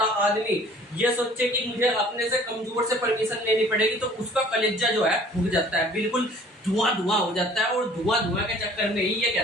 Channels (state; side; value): normal; both; correlation 0.52